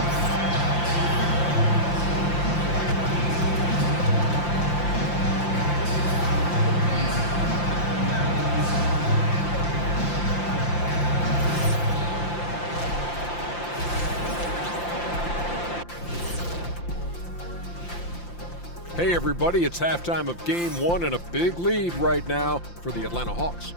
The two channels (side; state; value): right; late; 5.8 ms